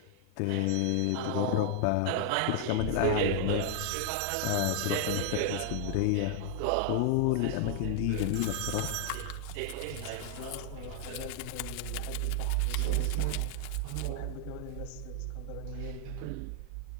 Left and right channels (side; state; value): both; different; correlation 0.00